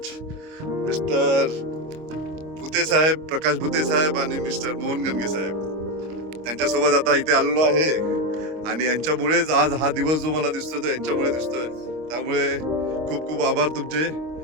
मिस्टर भुते साहेब, प्रकाश भुते साहेब आणि मिस्टर मोहन गणगे साहेब, त्यांच्यासोबत आता इथे आलेलो आहे. आणि यांच्यामुळेच आज हा दिवस जो मला दिसतोय तो यांच्यामुळे दिसतोय. त्यामुळे खूप खूप आभार तुमचे.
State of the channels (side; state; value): left; late; 25 ms